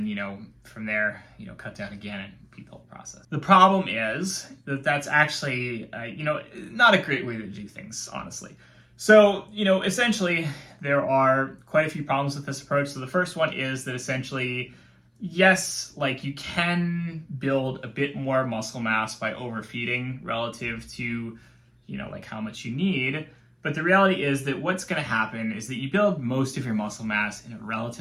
from there, cut down again and repeat the whole process. The problem is that that's actually, not a great way to do things, honestly. So, essentially, there are quite a few problems with this approach. So the first one is that essentially, yes, you can build a bit more muscle mass by overfeeding relative to, how much you need. But the reality is that what's going to happen is that you build most of your muscle mass in a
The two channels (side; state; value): both; identical; correlation 1.00